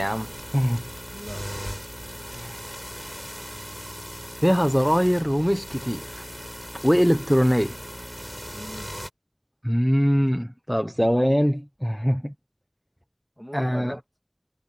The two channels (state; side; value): identical; both; correlation 1.00